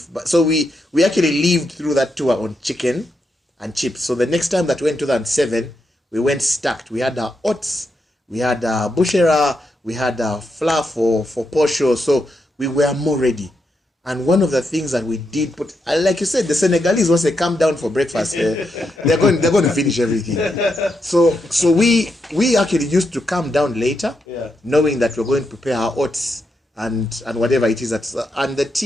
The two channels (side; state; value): both; normal; correlation 0.83